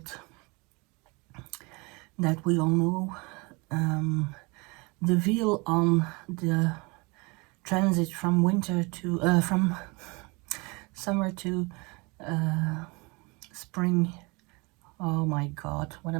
that we all know. The veil on the transit from winter to from summer to spring. Oh my god, what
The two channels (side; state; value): left; quieter; 27.6 dB